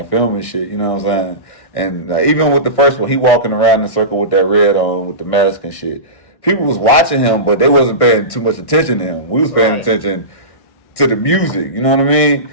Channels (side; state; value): right; late; 1.6 ms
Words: filming shit. You know what I'm saying? And even with the first one, he walking around in a circle with that red on, with the mask and shit. People was watching him, but they wasn't paying too much attention to him. We was paying Right. attention to the music. You know what I mean?